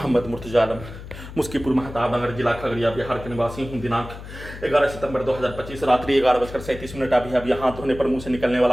मुर्तजा आलम, मुस्कीपुर महताब नगर, जिला खगड़िया, बिहार के निवासी हूँ। दिनांक 11 सितंबर 2025 रात्रि 11:37 अब यहाँ धोने पर मुंह से निकलने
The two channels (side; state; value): left; noise; hum, 13 dB below the sound